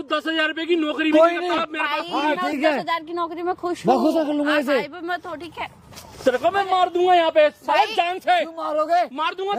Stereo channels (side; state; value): both; identical; correlation 1.00